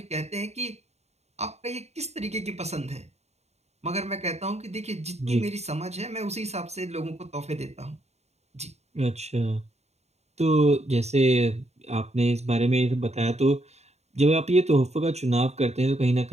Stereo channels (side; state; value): left; late; 0.31 ms